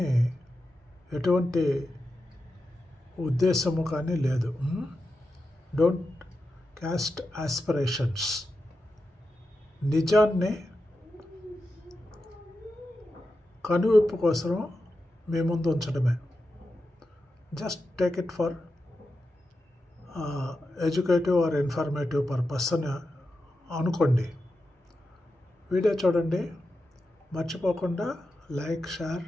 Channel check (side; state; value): both; normal; correlation 0.90